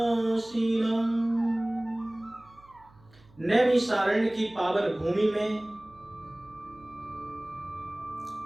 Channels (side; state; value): right; noise; hum, 27 dB below the sound